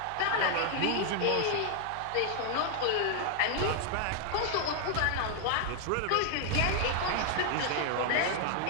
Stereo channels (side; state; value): both; different; correlation 0.00